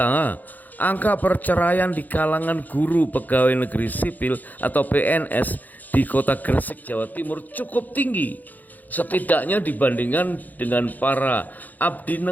angka perceraian di kalangan guru pegawai negeri sipil atau PNS di kota Gresik, Jawa Timur cukup tinggi. Setidaknya dibandingkan dengan para abdi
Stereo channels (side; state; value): right; late; 0.083 ms